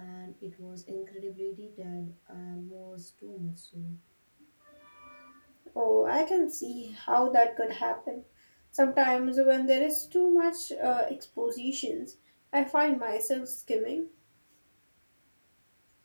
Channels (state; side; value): inverted; both; correlation -1.00